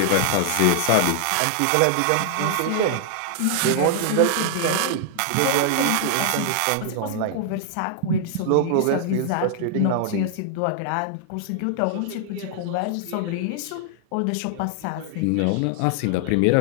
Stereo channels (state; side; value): different; both; correlation 0.00